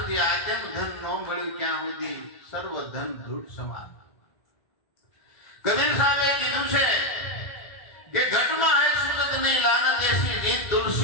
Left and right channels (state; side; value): late; right; 2.0 ms